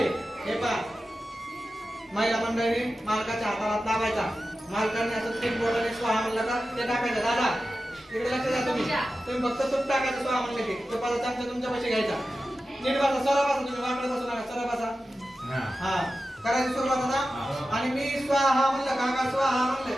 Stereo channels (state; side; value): normal; both; correlation 0.93